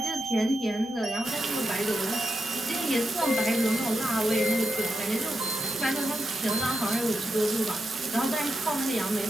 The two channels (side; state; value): both; normal; correlation 0.86